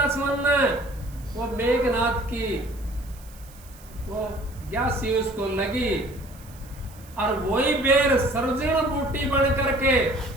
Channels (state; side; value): noise; right; hiss, 23 dB below the sound